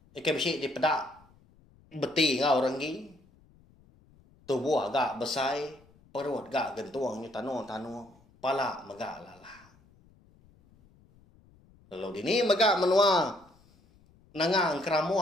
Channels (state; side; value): noise; left; rumble, 29 dB below the sound